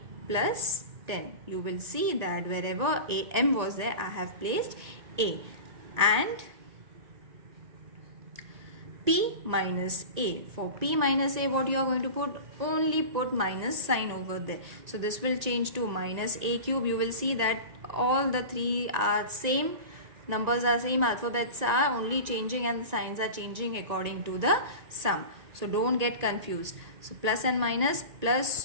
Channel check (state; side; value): late; left; 1.9 ms